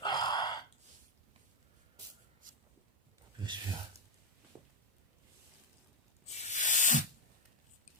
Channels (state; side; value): normal; both; correlation 0.03